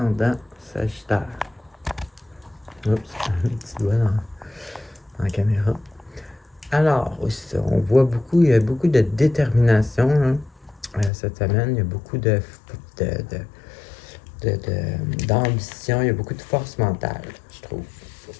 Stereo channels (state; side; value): drops out; right; at 11.1 s